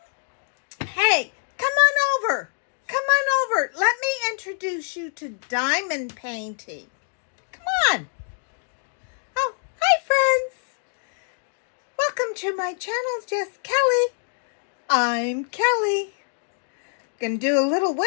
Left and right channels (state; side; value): silent; right; 58 dB below the other